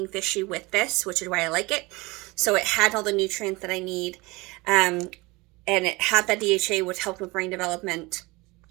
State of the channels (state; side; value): quieter; left; 23.7 dB